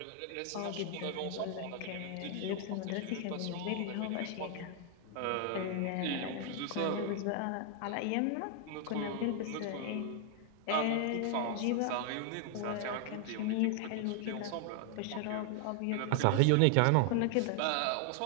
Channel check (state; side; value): different; both; correlation 0.00